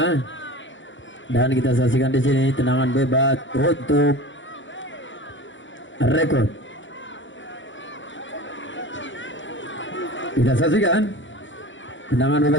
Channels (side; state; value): right; late; 0.55 ms